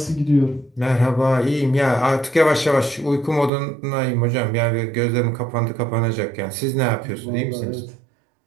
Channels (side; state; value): left; drops out; at 3.5 s